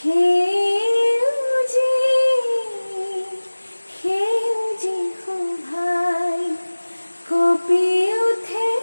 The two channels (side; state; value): both; inverted; correlation -1.00